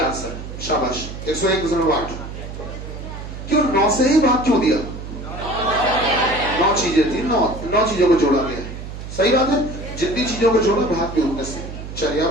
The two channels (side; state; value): right; noise; hum, 10 dB below the sound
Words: है। शाबाश, 101.8। क्यों 9 से ही भाग क्यों दिया? 9 चीजें थी, 9 चीजों को जोड़ा गया है। सही बात है, जितनी चीजों को जोड़ा भाग भी उतने से। चलिए अब